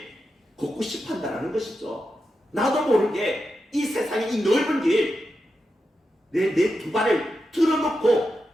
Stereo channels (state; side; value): normal; both; correlation 0.88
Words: 걷고 싶어 한다는 것이죠. 나도 모르게 이 세상의 이 넓은 길 내 두 발을 틀어놓고